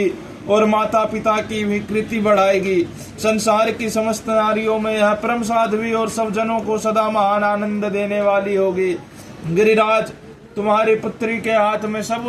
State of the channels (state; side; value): identical; both; correlation 1.00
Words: और माता पिता की भी कृति बढ़ाएगी। संसार की समस्त नारियों में यह परम साध्वी और सब जनों को सदा महान आनंद देने वाली होगी। गिरिराज, तुम्हारी पुत्री के हाथ में सब